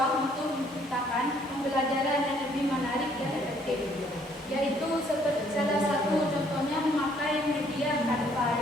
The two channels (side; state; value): both; normal; correlation 0.64